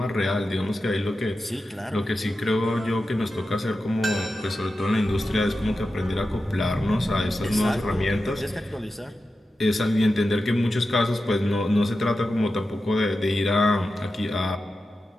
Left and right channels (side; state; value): both; normal; correlation 0.91